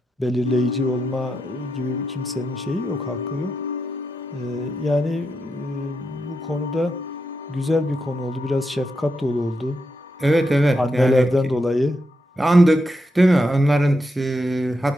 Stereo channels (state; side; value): normal; both; correlation 0.84